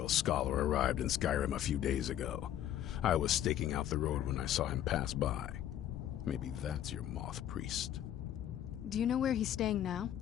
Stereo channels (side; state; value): right; quieter; 11.4 dB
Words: scholar arrived in Skyrim a few days ago. I was staking out the road when I saw him pass by. Maybe that's your Moth Priest. Do you know where he's staying now?